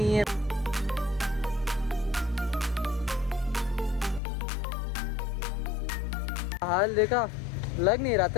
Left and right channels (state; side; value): drops out; right; at 4.2 s